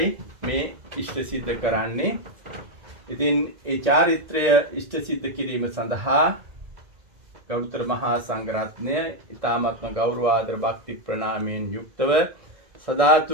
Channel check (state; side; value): late; left; 2.0 ms